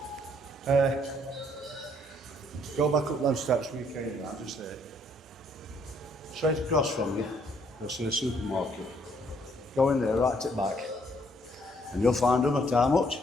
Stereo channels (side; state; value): both; normal; correlation 0.67